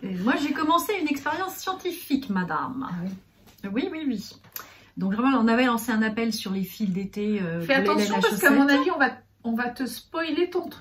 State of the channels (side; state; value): both; identical; correlation 1.00